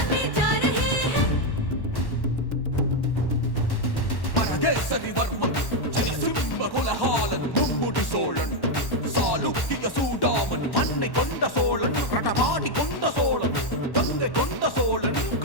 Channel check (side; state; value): right; late; 1.1 ms